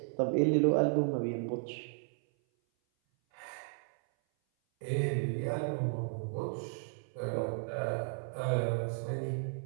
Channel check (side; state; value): left; silent; 55 dB below the other